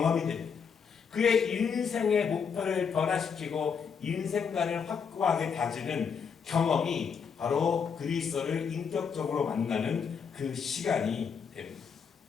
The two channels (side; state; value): right; quieter; 6.4 dB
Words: 됩니다. 그의 인생의 목표를 변화시키고 인생관을 확고하게 다지는 경험이 바로 그리스도를 인격적으로 만나는 그 시간이 됩니다.